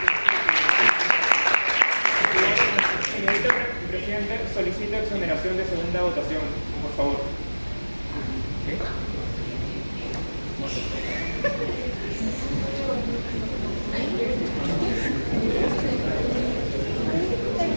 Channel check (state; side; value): inverted; both; correlation -1.00